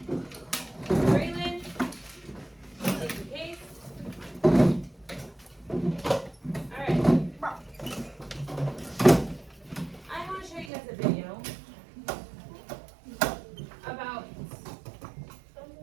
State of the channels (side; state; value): left; drops out; at 10.7 s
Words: Braylon. Thank you, Kate. Alright. I want to show you guys a video